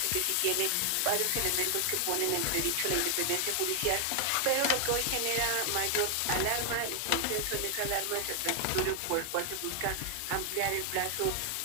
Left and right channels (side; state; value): both; different; correlation 0.00